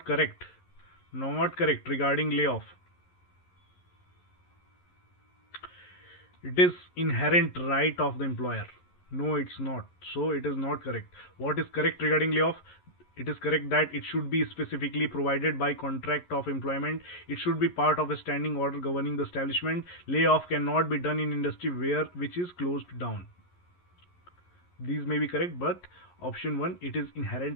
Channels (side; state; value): right; late; 11 ms